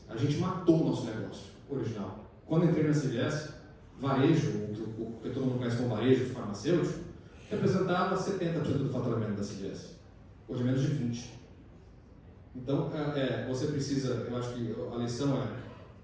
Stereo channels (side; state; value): both; identical; correlation 1.00